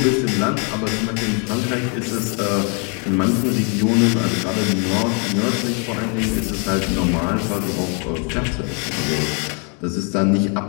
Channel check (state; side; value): quieter; right; 37.6 dB